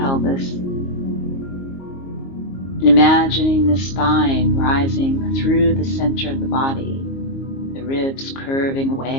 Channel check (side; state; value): right; late; 22 ms